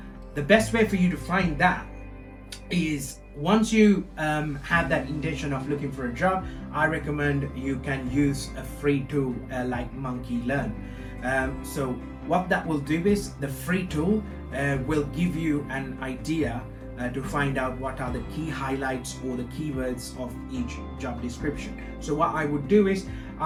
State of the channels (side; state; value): both; identical; correlation 1.00